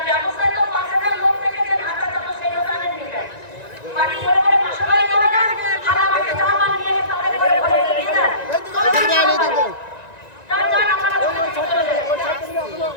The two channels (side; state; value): right; late; 1.9 ms